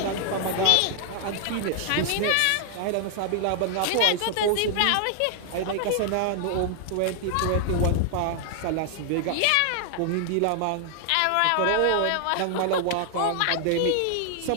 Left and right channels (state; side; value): different; both; correlation 0.00